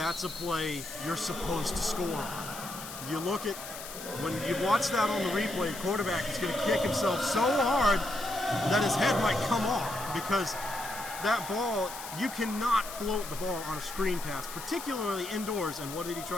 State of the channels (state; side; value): noise; left; hiss, 11 dB below the sound